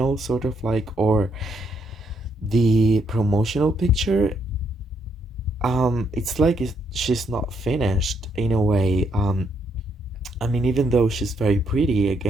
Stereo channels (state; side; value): normal; both; correlation 0.74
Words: sort of like or the promotional picture. It's like she's not finished in a way. I mean, even though she's very pretty,